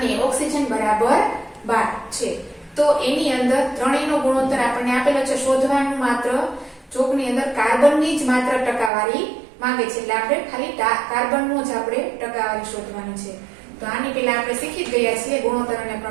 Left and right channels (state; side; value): drops out; left; at 8.9 s